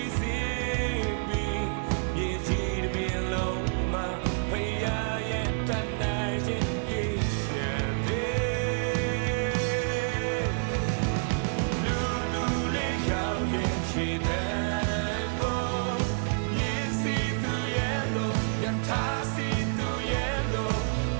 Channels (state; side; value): silent; left; digital silence